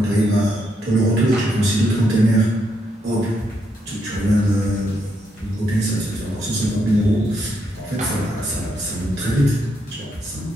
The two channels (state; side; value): normal; both; correlation 0.78